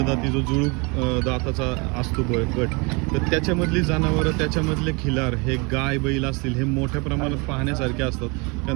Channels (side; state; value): left; quieter; 29.4 dB